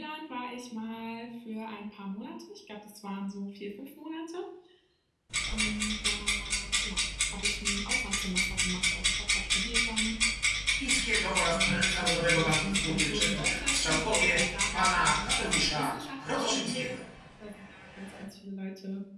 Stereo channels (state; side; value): identical; both; correlation 1.00